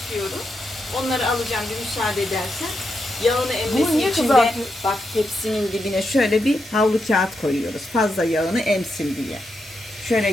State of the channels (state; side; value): normal; both; correlation 0.84